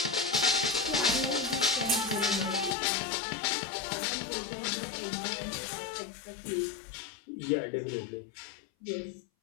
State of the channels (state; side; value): drops out; right; at 2.8 s